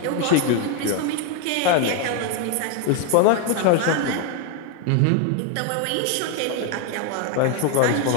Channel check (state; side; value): different; both; correlation 0.01